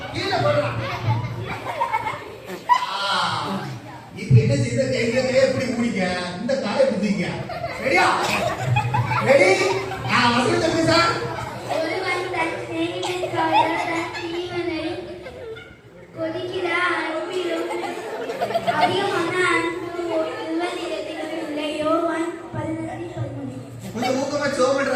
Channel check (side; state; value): both; identical; correlation 1.00